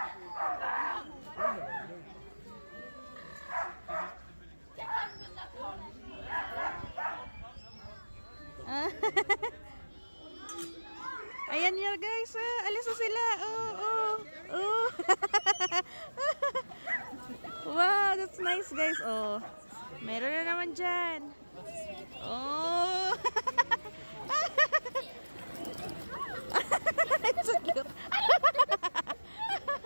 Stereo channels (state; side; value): inverted; both; correlation -1.00